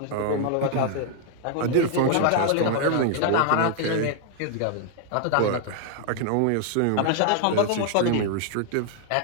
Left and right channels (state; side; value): different; both; correlation 0.00